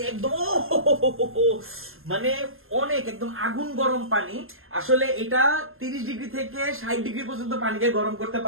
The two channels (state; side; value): late; left; 0.61 ms